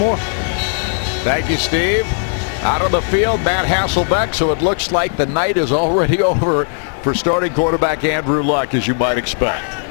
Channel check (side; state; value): right; silent; 56 dB below the other